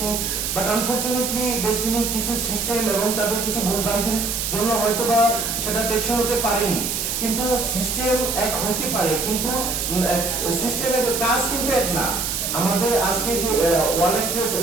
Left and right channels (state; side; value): noise; right; hiss, 2 dB below the sound